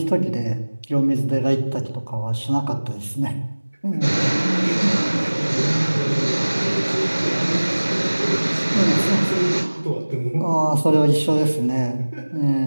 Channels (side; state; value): both; inverted; correlation -1.00